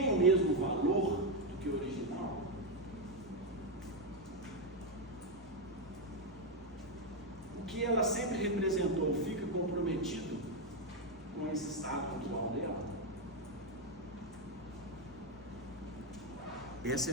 o mesmo valor do que o original? O que ela sempre representou fica comprometido com esse estado atual dela? Essa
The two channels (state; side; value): normal; both; correlation 0.05